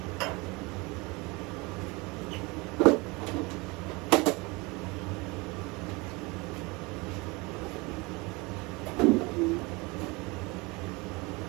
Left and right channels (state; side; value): quieter; left; 25.6 dB